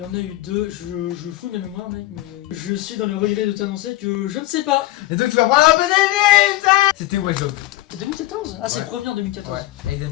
en a eu deux. Je fous ma mémoire, mec, mais je suis dans le regret de t'annoncer que je ne sais pas. Et donc tu vas prendre un peu d'énergie, putain. C'était Watch Dogs. C'est 2014? Ah, c'est Ouais. le premier en 2014. Ouais,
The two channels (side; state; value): right; quieter; 16.7 dB